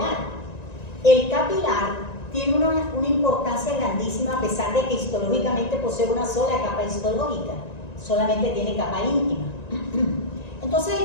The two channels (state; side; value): late; right; 1.9 ms